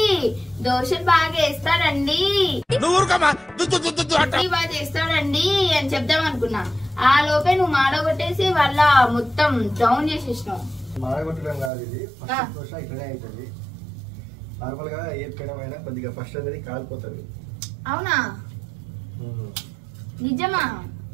దోశలు బాగా వేస్తాడండి, బాగా చేస్తాడండి అని చెప్దాం అనుకున్నా. ఆ లోపే నువ్వు మాడగొట్టేసి వాళ్ళ మొత్తం డౌన్ చేసేసినావు. మాడగొట్టడం కాదు, ఇది ఫస్ట్ దోశ ఇట్లనే అవుతుంది. నార్మల్ గా ఏ పెనమైనా కొద్దిగా ఫస్ట్ అనేది కాలిపోతుంది. అవునా? నిజమా?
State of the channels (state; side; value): drops out; left; at 11.7 s